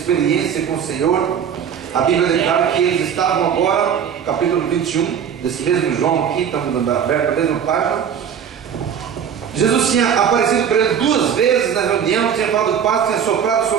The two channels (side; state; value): left; quieter; 8.1 dB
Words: com o Senhor, a Bíblia declara que eles estavam agora, no capítulo 21, desse mesmo João aqui, estamos aberto a mesma página. Jesus tinha aparecido para eles 2 vezes na reunião, tinha falado paz, tinha soprado